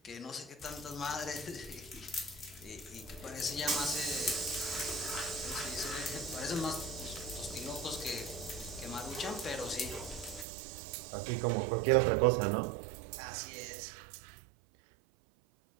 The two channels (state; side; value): drops out; left; at 10.5 s